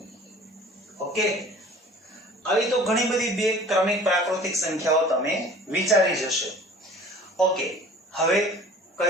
ઓકે આવી તો ઘણી બધી બે ક્રમિક પ્રાકૃતિક સંખ્યાઓ તમે વિચારી જશે ઓકે હવે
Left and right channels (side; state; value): both; normal; correlation 0.47